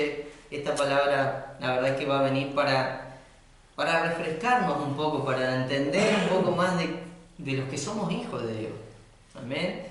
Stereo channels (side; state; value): both; identical; correlation 1.00